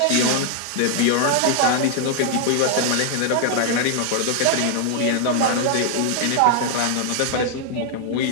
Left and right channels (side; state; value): both; different; correlation 0.00